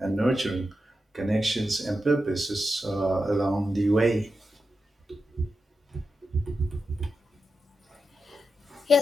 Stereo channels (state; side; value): normal; both; correlation 0.89